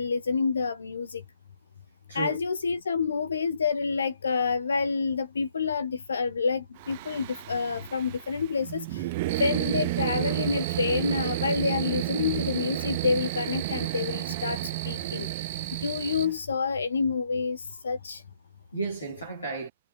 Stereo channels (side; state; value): both; inverted; correlation -0.66